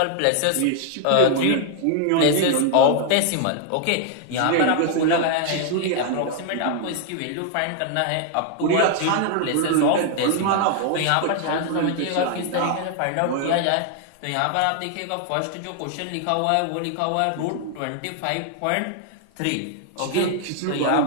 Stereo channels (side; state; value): both; different; correlation 0.00